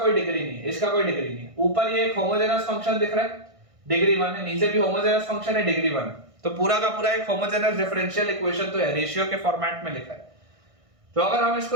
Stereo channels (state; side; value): late; left; 1.5 ms